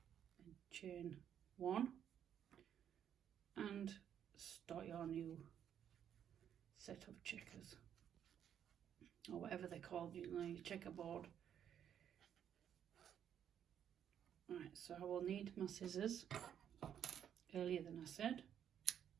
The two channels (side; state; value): left; quieter; 9.2 dB